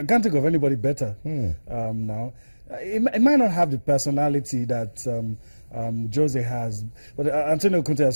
can't think of anybody better now. It might not have the personality that Jose has, but Antonio Conte is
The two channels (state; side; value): inverted; both; correlation -1.00